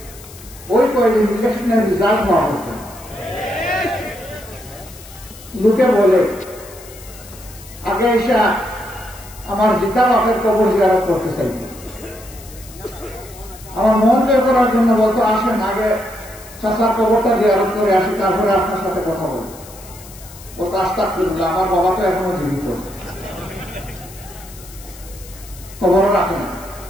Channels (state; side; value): noise; left; hiss, 19 dB below the sound